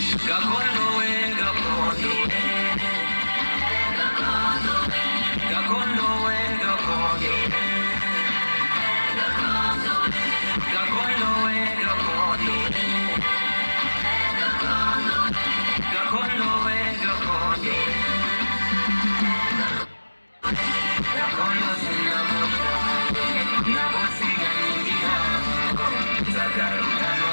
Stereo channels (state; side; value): inverted; both; correlation -1.00